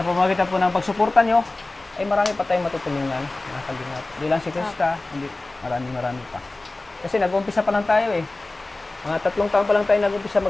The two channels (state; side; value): quieter; right; 3.0 dB